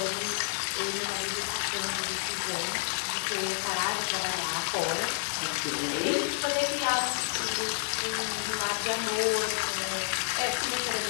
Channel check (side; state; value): right; silent; 58 dB below the other